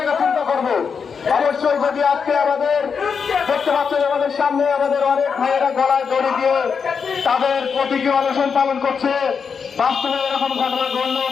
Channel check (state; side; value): quieter; right; 6.1 dB